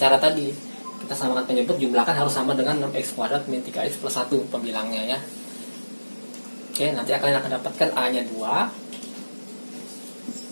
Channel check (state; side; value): inverted; both; correlation -1.00